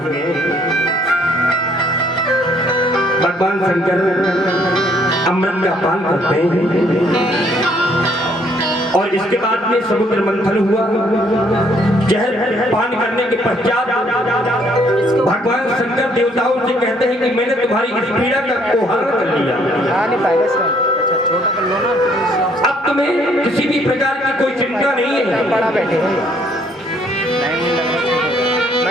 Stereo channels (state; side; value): normal; both; correlation 0.65